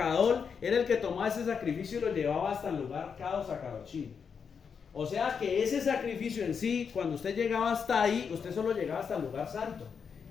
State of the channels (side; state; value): right; quieter; 6.4 dB